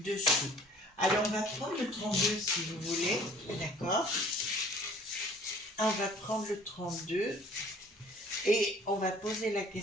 dessous. Alors, on va prendre le 32 si vous voulez, d'accord? On va prendre le 32 et on va poser la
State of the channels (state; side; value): normal; both; correlation 0.52